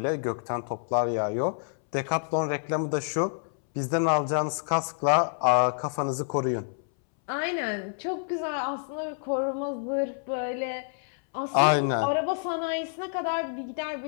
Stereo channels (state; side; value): silent; right; 59 dB below the other